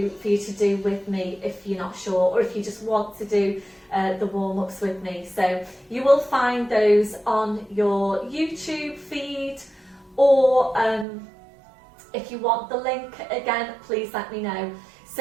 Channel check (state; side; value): drops out; left; at 11.1 s